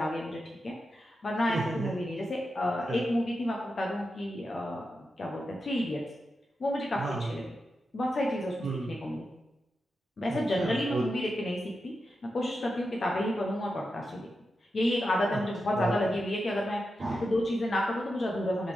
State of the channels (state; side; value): normal; both; correlation 0.89